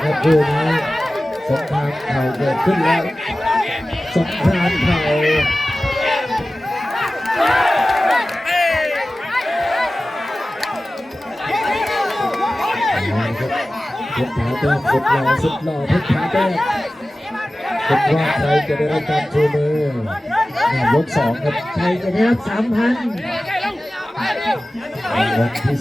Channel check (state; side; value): normal; both; correlation 0.96